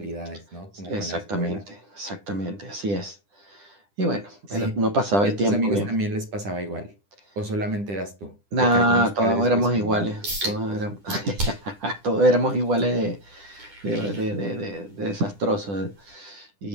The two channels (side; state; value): left; late; 10 ms